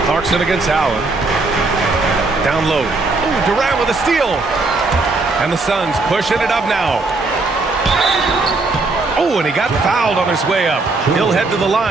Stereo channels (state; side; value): quieter; left; 3.5 dB